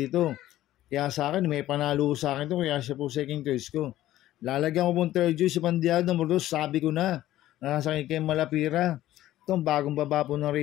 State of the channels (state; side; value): quieter; right; 14.3 dB